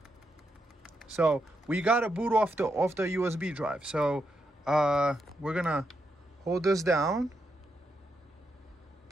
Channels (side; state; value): both; normal; correlation 0.82